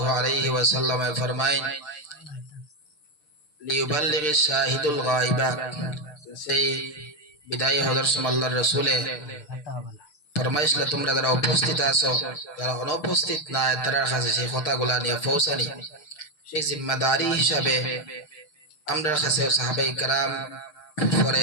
আলাইহি ওয়াসাল্লাম ফরমায় লিউবাল্লিগিশ শাহিদুল গায়বা। সেই বিদায় হযরত আল্লাহর রাসূলে ফরমাইছিল, তোমরা যারা উপস্থিত আছো, যারা অনুপস্থিত নাই তাদের কাছে সেই কথাগুলা নিয়ে পৌঁছানি। সেই জিম্মাদারি হিসাবে আমরা কাছে সাহাবায়ে কেরাম,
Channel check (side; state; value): right; late; 6.6 ms